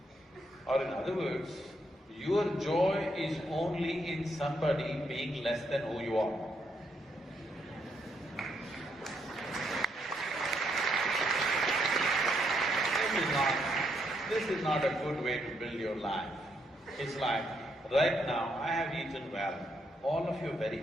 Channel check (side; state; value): both; normal; correlation 0.76